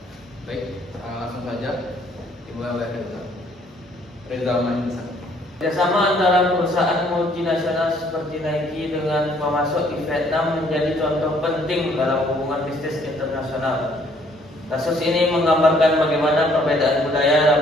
Baik, langsung saja dimulai oleh Reza Manisa. Kerjasama antara perusahaan multinasional seperti Nike dengan pemasok di Vietnam menjadi contoh penting dalam hubungan bisnis internasional. Kasus ini menggambarkan bagaimana perbedaan budaya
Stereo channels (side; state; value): both; normal; correlation 0.63